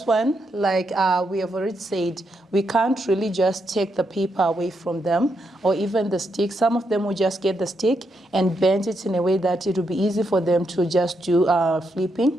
one, like we have already said, we can't really just take the paper away from them, or even the stick. Some of them will just get the stick and bend it in a way that it will be easy for them to just do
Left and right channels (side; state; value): both; normal; correlation 0.81